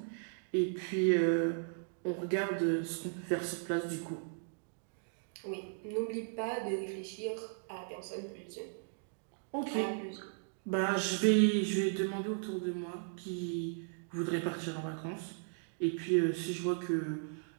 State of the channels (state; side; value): silent; left; digital silence